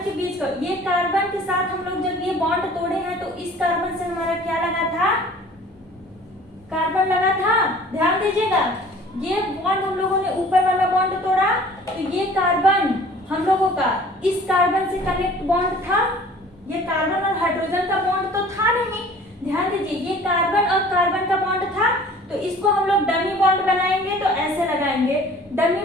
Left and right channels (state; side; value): normal; both; correlation 0.49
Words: के बीच का, ये कार्बन के साथ हम लोग जब ये बॉन्ड तोड़े हैं तो इस कार्बन से हमारा क्या लगा था, कार्बन लगा था। ध्यान दीजिएगा, ये बॉन्ड हम लोगों ने ऊपर वाला बॉन्ड तोड़ा, तो ये कार्बन हम लोगों का इस कार्बन से कनेक्ट बॉन्ड था। ये कार्बन और हाइड्रोजन का बॉन्ड तो था नहीं, ध्यान दीजिए, ये कार्बन और कार्बन का बॉन्ड था, तो इसको हम लोग डमी बॉन्ड बनाएंगे, तो ऐसे लगाएंगे डमी